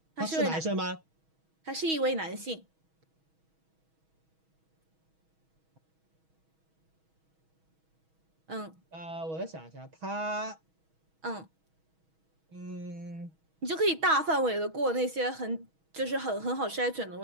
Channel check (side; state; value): left; late; 6.2 ms